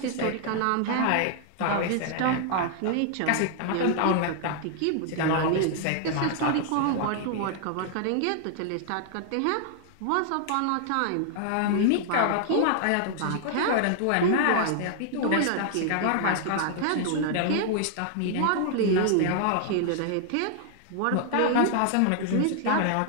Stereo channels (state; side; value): different; both; correlation 0.00